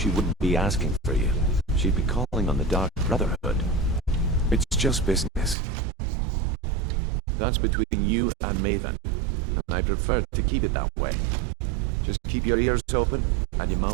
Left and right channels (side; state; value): left; drops out; at 5.6 s